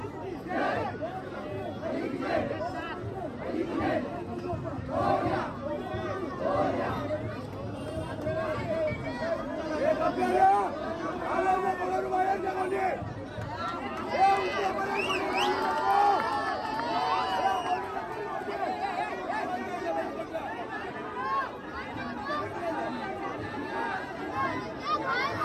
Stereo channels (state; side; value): identical; both; correlation 1.00